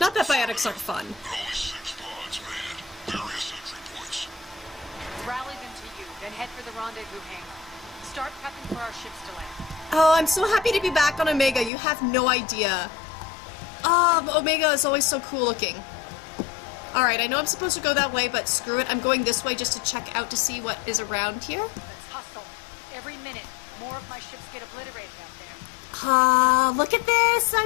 Not that biotics aren't fun. Only 6 pods, man. Various entry points. Rally them to you, then head for the rendezvous hangar. Start prepping for our ships to land. Oh, I'm so happy to be back on Omega. You have no idea. Omega is always so cool looking. Alright, I know I'm supposed to go that way, but screw it. I'm going this way just to check out to see what is around here. Let's hustle. Every minute, more of my ships get obliterated out there. Look at this!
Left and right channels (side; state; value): right; drops out; at 11.7 s